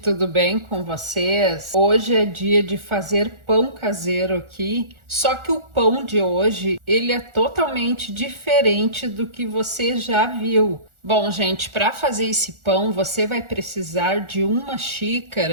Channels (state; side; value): late; left; 1.4 ms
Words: bem com vocês? Hoje é dia de fazer pão caseiro aqui, só que o pão de hoje, ele é totalmente diferente do que você já viu. Bom, gente, para fazer esse pão, você vai precisar de uma